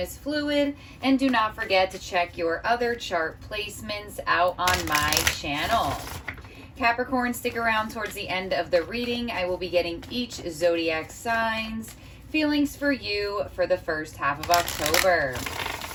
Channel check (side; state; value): both; identical; correlation 1.00